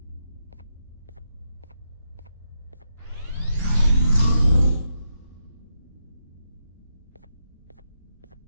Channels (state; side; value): inverted; both; correlation -0.83